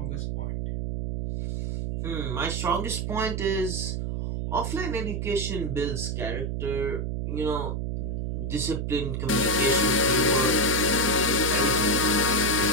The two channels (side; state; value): right; noise; hum, 2 dB below the sound